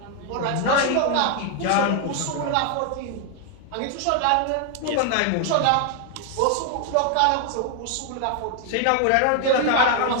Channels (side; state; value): both; different; correlation 0.00